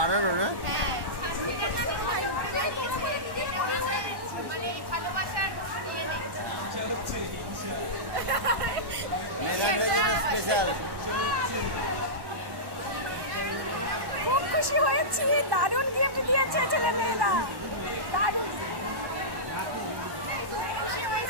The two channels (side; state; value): left; late; 1.1 ms